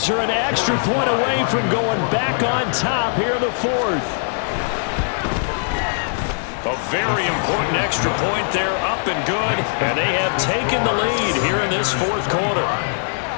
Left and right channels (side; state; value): right; silent; 65 dB below the other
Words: are an extra point away from going back on top here in the 4th. A very important extra point there, up and good, and they have taken the lead here in this 4th quarter.